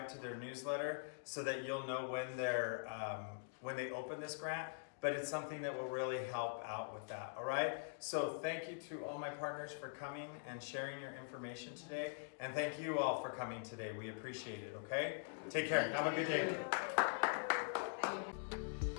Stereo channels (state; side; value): silent; right; digital silence